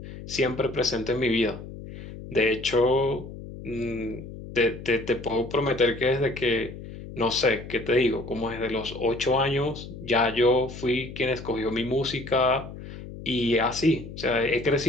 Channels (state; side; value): noise; left; hum, 12 dB below the sound